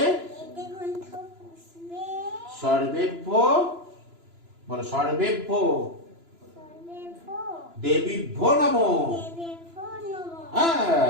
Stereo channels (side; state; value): left; late; 3.0 ms